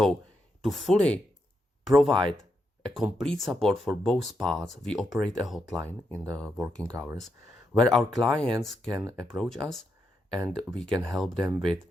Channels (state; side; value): normal; both; correlation 0.83